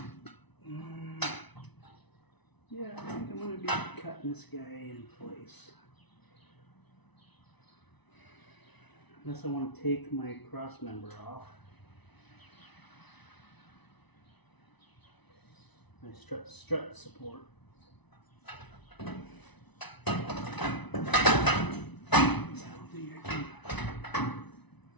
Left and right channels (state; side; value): late; right; 1.0 ms